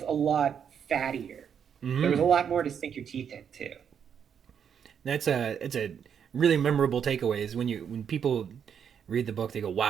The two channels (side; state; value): left; quieter; 7.8 dB